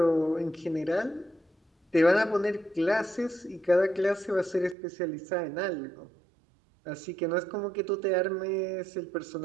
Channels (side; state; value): left; drops out; at 4.8 s